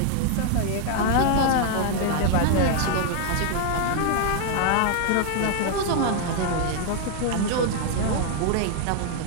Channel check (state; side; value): different; both; correlation 0.00